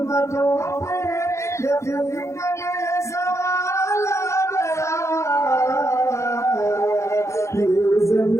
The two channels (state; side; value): late; right; 0.14 ms